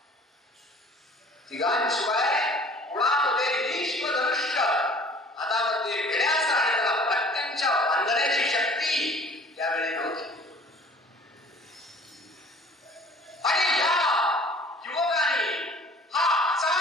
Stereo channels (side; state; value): both; normal; correlation 0.50